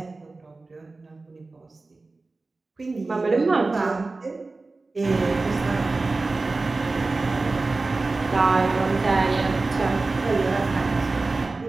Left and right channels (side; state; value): left; quieter; 3.5 dB